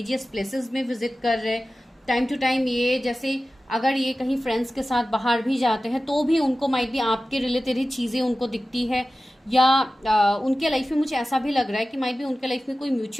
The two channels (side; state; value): both; normal; correlation 0.95